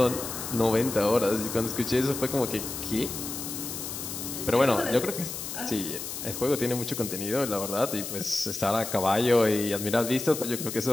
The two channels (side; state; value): left; noise; hiss, 7 dB below the sound